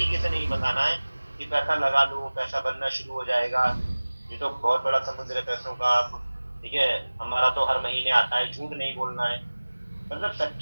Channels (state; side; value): inverted; both; correlation -1.00